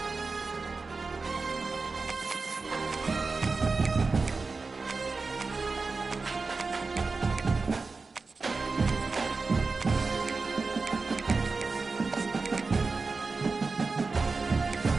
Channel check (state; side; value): quieter; left; 4.1 dB